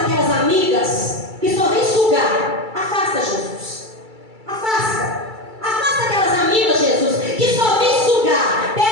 aquelas amigas que só vêm sugar. Afasta, Jesus. Afasta. Afasta aquelas amigas, Jesus, que só vêm sugar.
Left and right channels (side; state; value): left; late; 2.3 ms